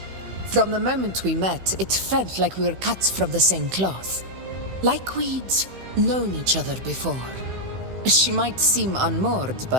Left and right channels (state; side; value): late; left; 16 ms